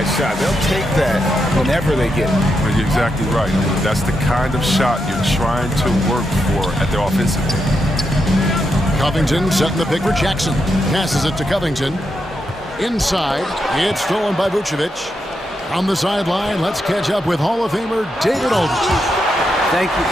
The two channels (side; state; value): both; normal; correlation 0.83